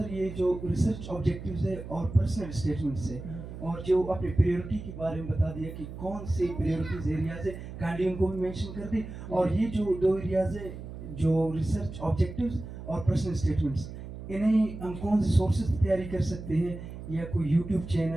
یہ جو ریسرچ آبجیکٹیوز ہے اور پرسنل اسٹیٹمنٹس ہے اور جو اپنے پریورٹی کے بارے میں بتا دیا کہ کون سے پریورٹیز ایریاز ہے, کائنڈلی ان کو بھی مینشن کر دیں. اور یہ جو 2 ایریاز ہے جو ریسرچ آبجیکٹیوز اور پرسنل اسٹیٹمنٹس, انہیں ہم کون سے سورسز تیاری کر سکتے ہیں, یا کوئی یوٹیوب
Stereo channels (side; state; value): right; noise; hum, 11 dB below the sound